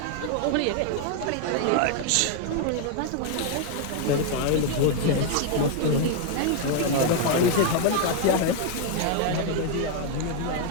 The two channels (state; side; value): different; both; correlation 0.00